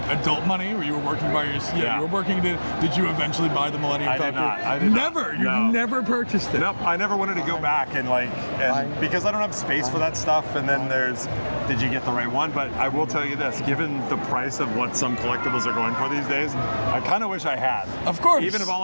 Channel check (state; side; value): inverted; both; correlation -1.00